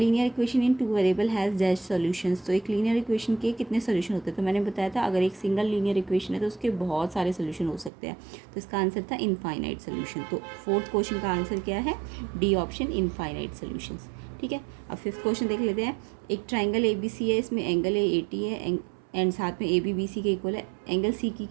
equation in 2 variable has dash solutions. तो एक लीनियर इक्वेशन के कितने सोल्यूशन होते हैं। तो मैंने बताया था अगर एक सिंगल लीनियर इक्वेशन है तो उसके बहुत सारे सोल्यूशन हो सकते हैं। तो इसका आंसर था इनफाइनाइट सोल्यूशन। तो फोर्थ क्वेश्चन का आंसर क्या है, डी ऑप्शन, इनफाइनाइट सोल्यूशंस। ठीक है, अब फिफ्थ क्वेश्चन देख लेते हैं। एक ट्राइंगल ABC है, इसमें एंगल AT है एंड साथ में AB BC के इक्वल है। एंगल C की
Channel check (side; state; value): left; drops out; at 7.9 s